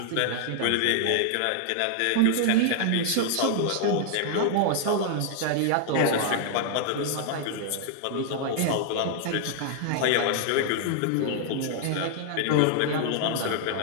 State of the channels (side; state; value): both; different; correlation 0.00